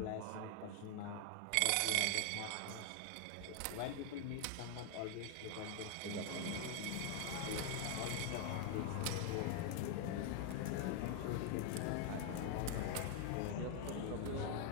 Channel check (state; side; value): different; both; correlation 0.00